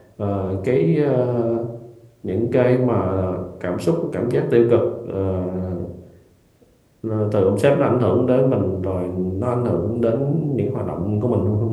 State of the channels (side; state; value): both; identical; correlation 1.00